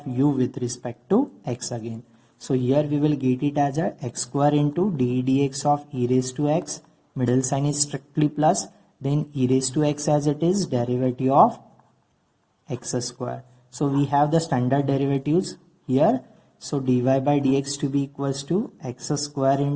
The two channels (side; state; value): both; identical; correlation 1.00